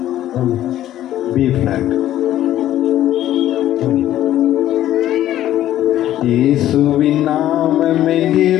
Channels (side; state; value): right; quieter; 12.8 dB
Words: B flat. இயேசுவின் நாமமே